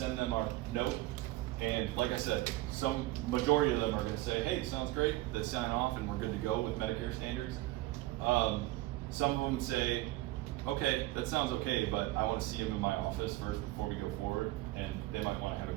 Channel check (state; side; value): quieter; left; 18.0 dB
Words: them our note. And like I said, some majority of them are going to say, "Hey, sounds great." They sign off, and we're good to go with Medicare standards. Some of them say, "Okay, that sounds okay, but I want to see him in my office first before we go forward," and they might want to have